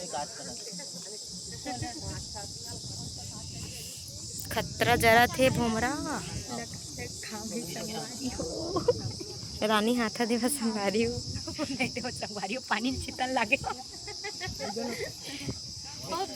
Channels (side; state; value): both; identical; correlation 1.00